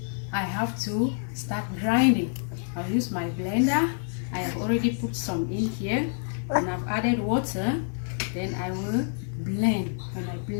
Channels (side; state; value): right; silent; 60 dB below the other